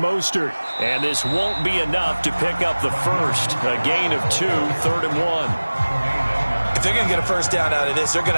Mostert. And this won't be enough to pick up the first. A gain of 2, 3rd and 1. If they're going to get a first down out of this, they're going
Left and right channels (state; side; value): inverted; both; correlation -1.00